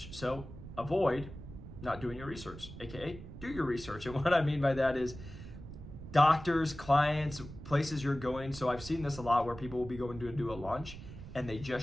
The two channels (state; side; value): noise; right; rumble, 13 dB below the sound